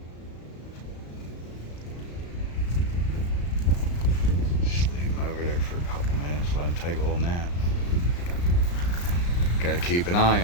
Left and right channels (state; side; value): late; right; 35 ms